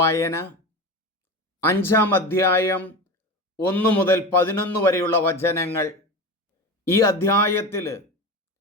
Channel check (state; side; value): normal; both; correlation 0.26